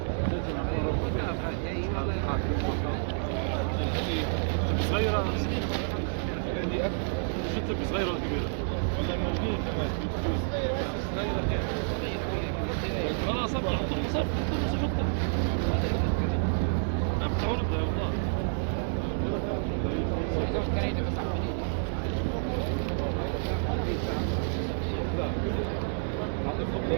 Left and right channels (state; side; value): silent; left; digital silence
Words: صغيرة شفت صغيرة ولا كبيرة؟ والله موجود كمان. خلاص ابدا حط المصاب حط عم تعرض والله